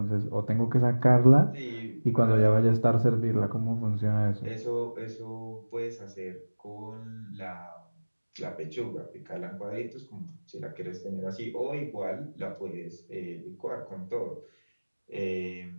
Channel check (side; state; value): both; inverted; correlation -1.00